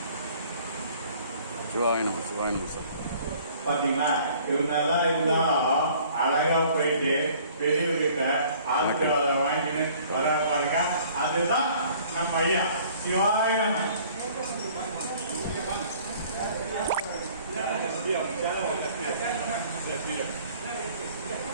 சிவாய நம சிவாய நம. சார் பாத்தீங்களா, இவங்கெல்லாம் இருந்தாலும் அழகா போயிட்டு பெரியவர்கிட்ட ஆசீர்வாதம் வாங்கிட்டு வர பாருங்க. அதுதான் நம்ம ஐயா. சிவாய நம.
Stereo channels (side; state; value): both; inverted; correlation -0.54